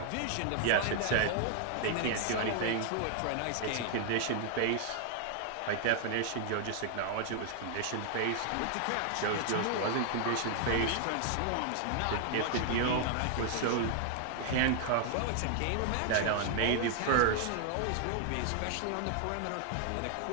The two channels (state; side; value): different; both; correlation 0.00